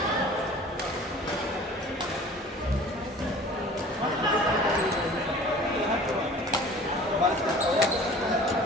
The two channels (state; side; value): normal; both; correlation 0.45